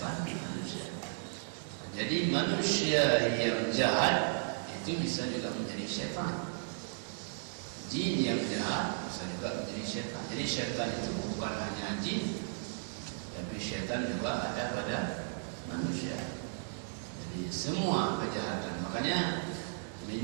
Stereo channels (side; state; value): left; silent; digital silence